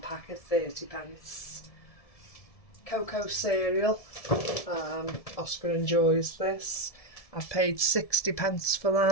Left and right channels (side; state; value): right; late; 1.7 ms